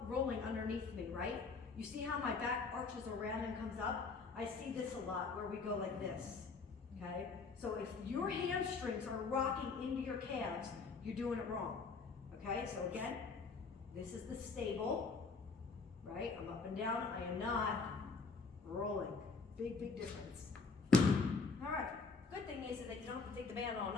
underneath me, right? You see how my back arches around and comes up? I see this a lot where we go like this, okay? So if your hamstrings are rocking into your calves, you're doing it wrong, okay? So again, this is the stable, right? I'm up and down, I am not rolling. Big, big difference. All right, good thing is that you don't have to take the band on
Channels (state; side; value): quieter; right; 4.5 dB